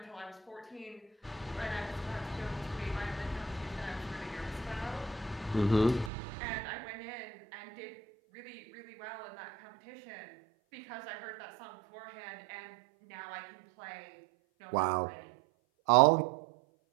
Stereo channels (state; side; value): drops out; left; at 6.1 s